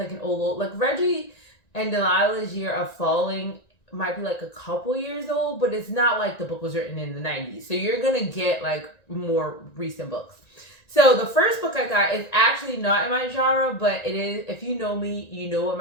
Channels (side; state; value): right; late; 1.9 ms